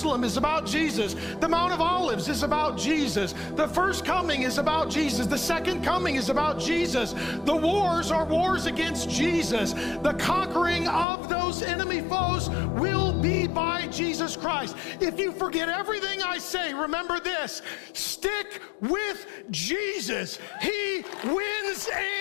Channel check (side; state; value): right; drops out; at 11.1 s